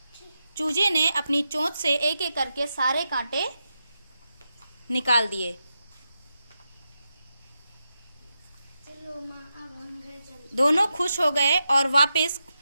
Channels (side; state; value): both; inverted; correlation -0.87